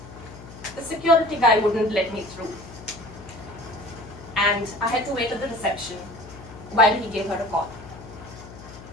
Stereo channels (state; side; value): noise; left; hum, 16 dB below the sound